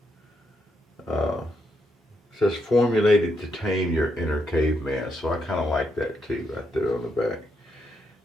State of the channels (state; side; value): normal; both; correlation 0.79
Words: it says formulated to tame your inner caveman. So I kind of like that too, right there on the back.